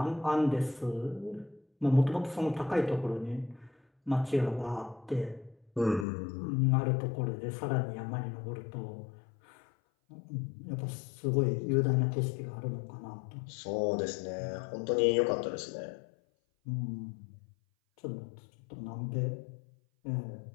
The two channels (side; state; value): right; drops out; at 6.1 s